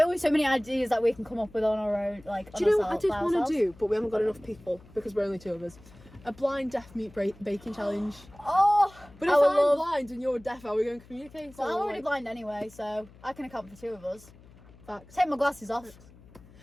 so many ideas that we can come up with on our own. Like, do you know what I did want to do, but we haven't got enough people because we're only 2 of us? A blind deaf meat baking challenge. Oh, but if I'm blind and you're deaf, are we going to communicate? Well, I'm already blind anyway, so I can account for 2 of us. Facts. Take my glasses off.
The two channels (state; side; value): noise; left; hum, 23 dB below the sound